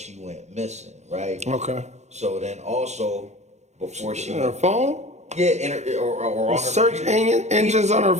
went missing, right? Okay. So then also before she On her phone? yeah, or on her Search computer. engines on her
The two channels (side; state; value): left; late; 0.33 ms